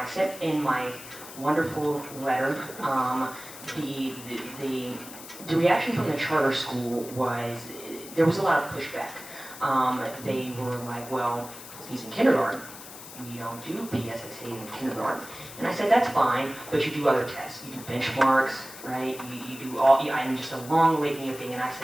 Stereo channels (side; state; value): left; noise; hiss, 15 dB below the sound